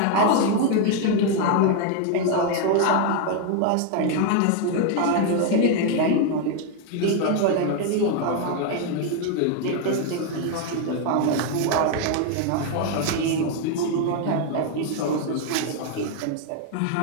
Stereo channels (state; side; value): different; both; correlation 0.01